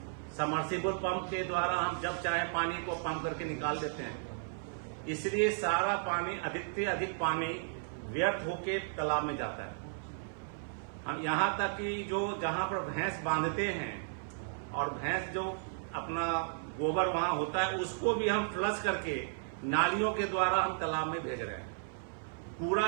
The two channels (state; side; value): silent; left; 55 dB below the other